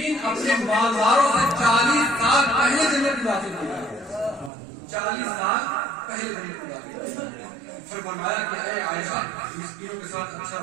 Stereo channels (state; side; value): drops out; left; at 4.5 s